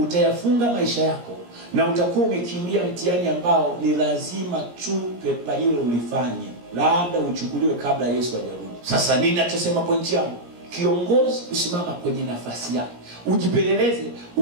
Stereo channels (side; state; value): left; late; 17 ms